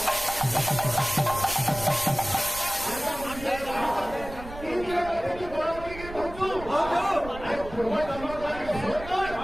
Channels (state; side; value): noise; right; rumble, 13 dB below the sound